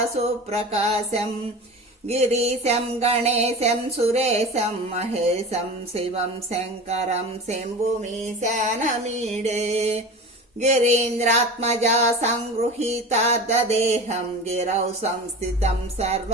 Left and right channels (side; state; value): both; normal; correlation 0.32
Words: సుప్రకాశం గిరీశం గణేశం సురేశం మహేశం శివం శంకరం శంభుమీశానమీడే గిరీంద్రాత్మజా సంగృహీతార్ధదేహం గిరౌ సంస్థితం